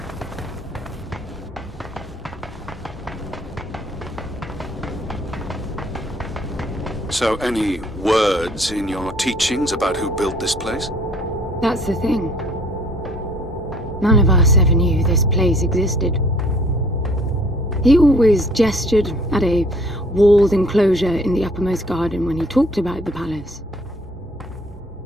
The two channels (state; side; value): normal; both; correlation 0.57